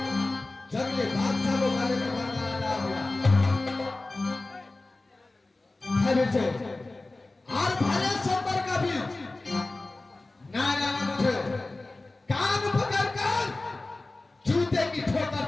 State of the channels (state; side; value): quieter; right; 3.1 dB